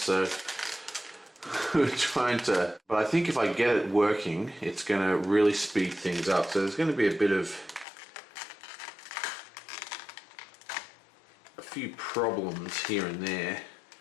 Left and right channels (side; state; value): right; drops out; at 7.9 s